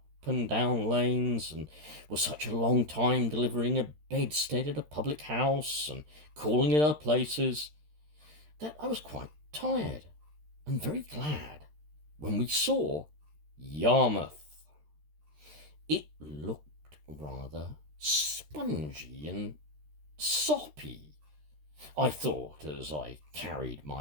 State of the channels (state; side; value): late; left; 13 ms